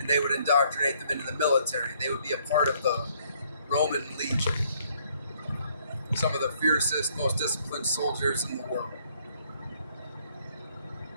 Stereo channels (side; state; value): both; inverted; correlation -0.66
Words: they would indoctrinate them into the military. They would be a part of the Roman Legion. Some of the fiercest, most disciplined soldiers in the world.